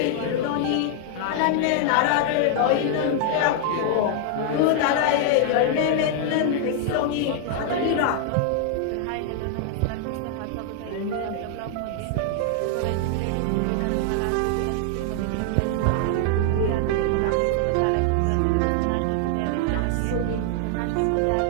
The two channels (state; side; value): different; both; correlation 0.00